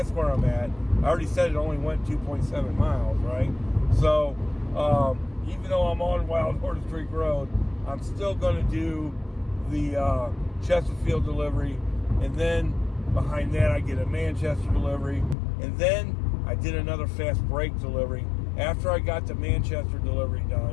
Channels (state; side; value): drops out; right; at 15.4 s